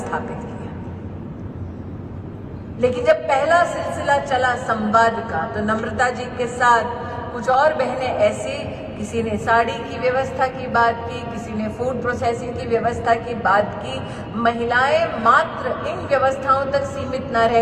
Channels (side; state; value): both; identical; correlation 1.00